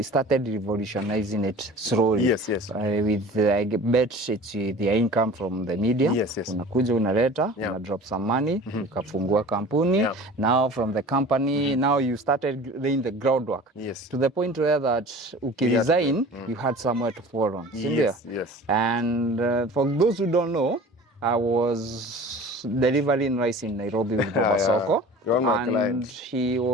started revolutionizing it slowly. Yes. With I bet it's the income from the media. Yes. Unakuja unaleta, una drop some money, ukafungua kampuni. Now from the company, now you started laying the groundwork. Yes. To the point where that ukiresign, you had somewhere to fall on. Yes. And for those who don't know, I was delivering rice in Nairobi with Baba Soko, and he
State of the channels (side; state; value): both; normal; correlation 0.42